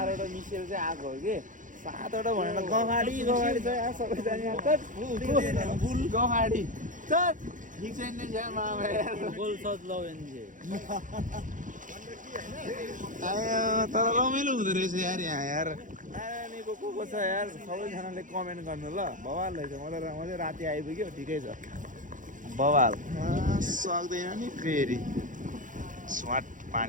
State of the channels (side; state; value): left; late; 0.38 ms